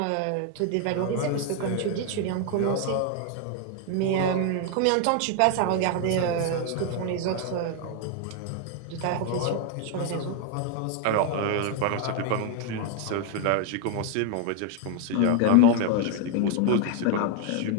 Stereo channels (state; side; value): different; both; correlation 0.01